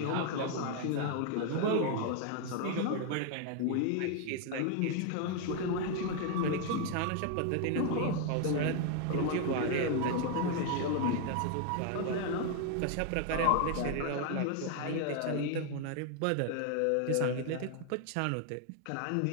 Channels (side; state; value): both; different; correlation 0.00